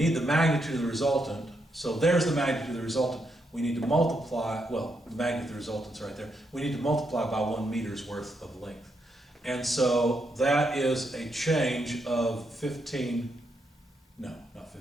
the magnitude of the resultant. So there's the magnitude of the resultant. We need to multiply, well, the magnitude of the resultant's right there. We need to multiply by 1 meter's worth of length. And so that is a change of 15, no, not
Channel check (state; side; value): normal; both; correlation 0.80